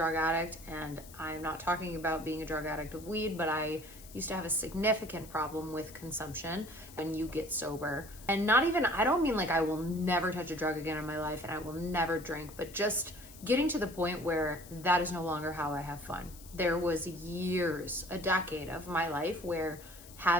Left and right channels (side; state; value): left; noise; hiss, 19 dB below the sound